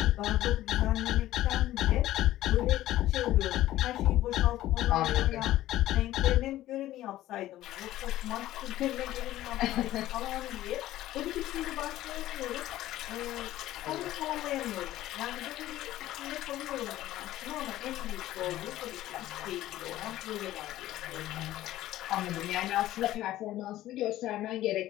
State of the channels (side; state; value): right; quieter; 14.7 dB